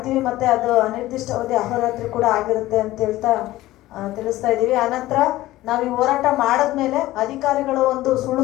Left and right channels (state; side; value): quieter; right; 16.5 dB